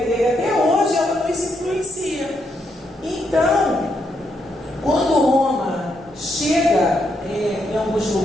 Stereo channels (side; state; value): both; normal; correlation 0.78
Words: até hoje ela nos influencia. Então, quando Roma chega em alguns